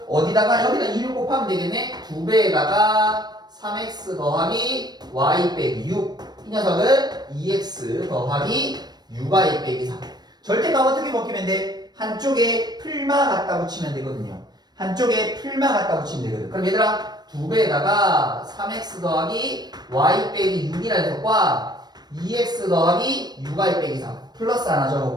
어디다가 여기다 2를 곱하면 되겠네. 2배에다가 3x 더하기 y 빼기 6. 이 녀석은 2x 더하기 6y 빼기 3. 절대값 어떻게 먹히면 돼? 한쪽에 풀마 갖다 붙이면 되거든요. 한쪽에 풀마 갖다 붙이면 되거든. 그럼 얘들아 2배에다가 3x 더하기 y 빼기 6이라는 녀석과 2x 더하기 6y 빼기 3 플러스 하나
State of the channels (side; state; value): left; late; 0.20 ms